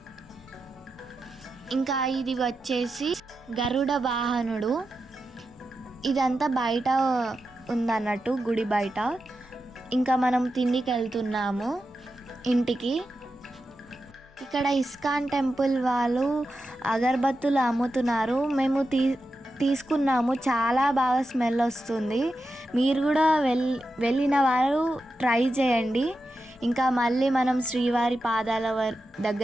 ఇంకా ఇది వచ్చేసి గరుడ వాహనుడు. ఇదంతా బయట ఉందన్నట్టు, గుడి బయట. ఇంకా మనం తిండికి వెళ్తున్నాము ఇంటికి. ఇక్కడ ఇస్కాన్ టెంపుల్ వాళ్ళు అగరబత్తులు అమ్ముతున్నారు. మేము తీసుకున్నాము. చాలా బాగా స్మెల్ వస్తుంది. మీరు కూడా వెళ్ళిన వారు ట్రై చేయండి. ఇంకా మళ్ళీ మనం శ్రీవారి పాదాల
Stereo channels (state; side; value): normal; both; correlation 0.89